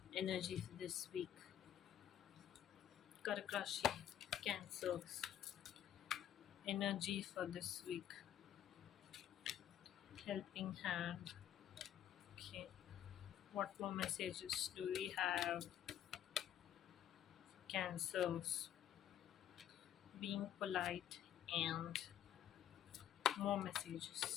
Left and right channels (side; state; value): right; quieter; 10.7 dB